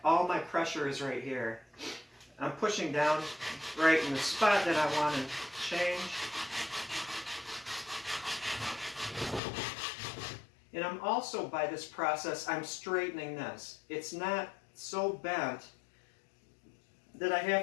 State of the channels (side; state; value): right; drops out; at 9.4 s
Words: All my pressure is right here. I'm pushing down right in the spot that I want to change. And I'm also, by this process, I'm straightening this. It's not so bent that I